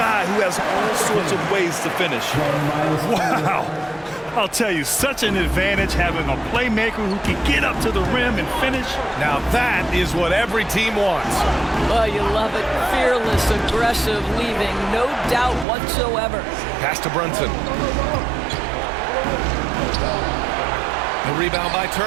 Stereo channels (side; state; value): left; drops out; at 15.7 s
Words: who has all sorts of ways to finish. Wow. I'll tell you, such an advantage having a playmaker who can get up to the rim and finish. Now that is what every team wants. Well, you love it. Fearless, aggressive, leaving no doubt whatsoever. Pass to Brunson. The rebound by